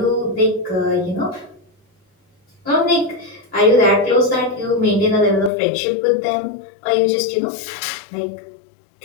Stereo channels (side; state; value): right; drops out; at 5.5 s